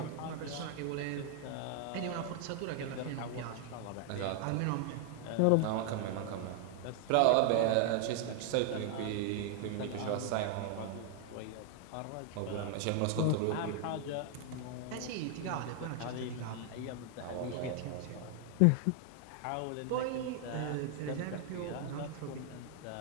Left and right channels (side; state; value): both; different; correlation 0.00